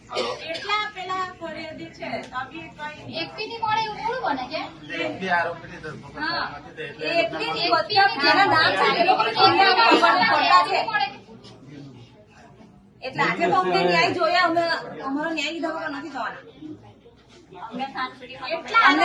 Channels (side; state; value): both; identical; correlation 1.00